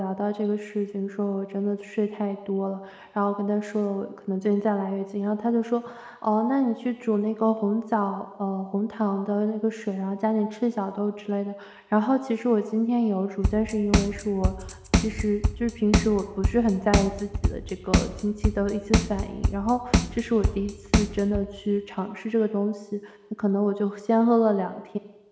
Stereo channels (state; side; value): identical; both; correlation 1.00